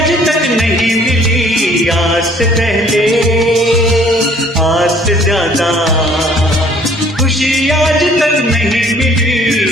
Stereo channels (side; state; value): both; normal; correlation 0.57